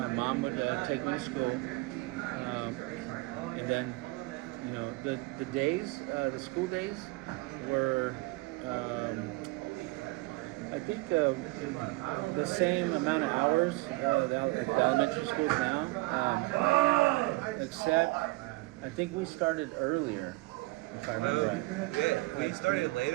mom would take me to school, and then, the days, the school days were, I think the same amount of hours the elementary schools now, except I think we started earlier, if I remember right. Yeah, we started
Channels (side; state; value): left; quieter; 22.7 dB